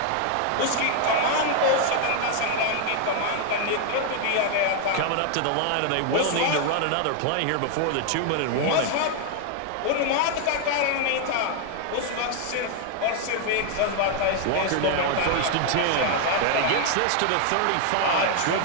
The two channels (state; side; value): different; both; correlation 0.00